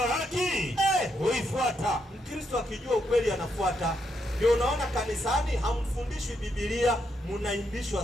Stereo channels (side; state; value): both; normal; correlation 0.79